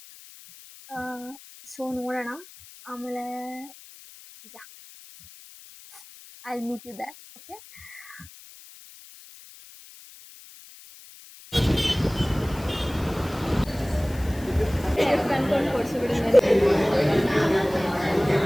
So ನೋಡೋಣ. ಆಮೇಲೆ ಯಾ I'll meet you there. Okay. ಕನ್ಕೊಂಡು ಕೊಡ್ಸಿಬಿಡು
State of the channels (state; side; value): noise; left; hiss, 20 dB below the sound